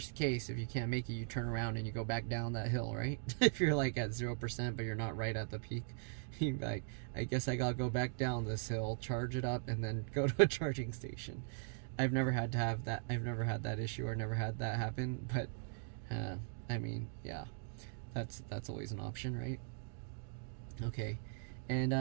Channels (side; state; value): left; silent; digital silence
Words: case, if you can't make it, you turn around and you go back down that hill, right? If you're like at 0% but you're not right at the peak, you're like, I guess I gotta go back down this hill, charge it up, and then go to a charging station. I've never had to have that. I've never had that issue or never had that happen, but I mean, yeah, that's always an option, right? Okay, and